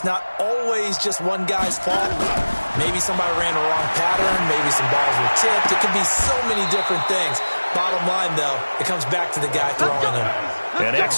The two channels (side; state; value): both; inverted; correlation -1.00